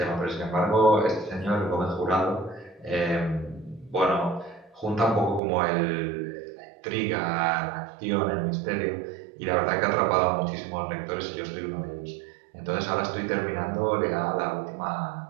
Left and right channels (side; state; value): left; drops out; at 5.4 s